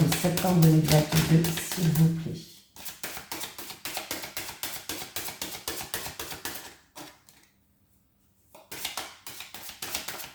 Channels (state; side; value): identical; both; correlation 1.00